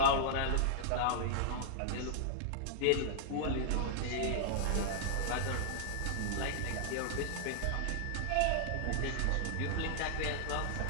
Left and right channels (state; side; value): different; both; correlation -0.01